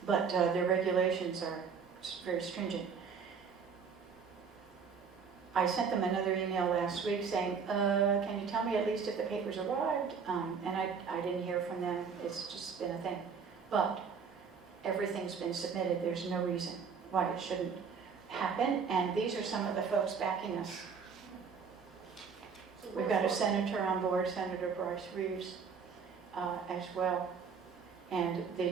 But their regulations are very stringent. I sent them another email last week saying, can you tell me at least if the papers arrived? And I didn't hear from them. It's just been a thing. But everything's been submitted. There's no reason why it shouldn't happen. And these are some of the folks backing us. We've got a senator on board, Senator Bryce Reeves, as well, and the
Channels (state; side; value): quieter; left; 6.0 dB